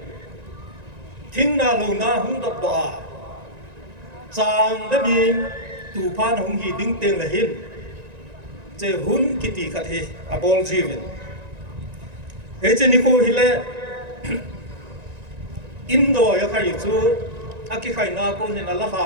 thing na lo na hung dop do a sang đã bị tù phan hùng hì đinh tiền là hin chế hun kiti khát he abol jivin he chế nikho hile indo ya khai chu aki khai na ko ne la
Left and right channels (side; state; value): left; late; 1.9 ms